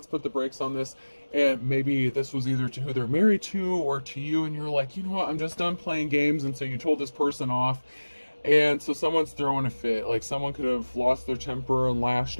put the brakes on this. And maybe this was either to who they're married to or to you. And you're like, you know what? I'm just done playing games. And so you told this person off. And so someone's throwing a fit. Like, someone could have lost their temper and lashed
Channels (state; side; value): inverted; both; correlation -1.00